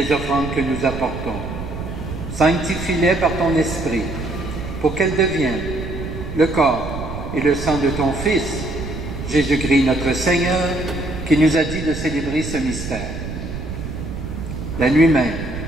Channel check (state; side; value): noise; right; rumble, 7 dB below the sound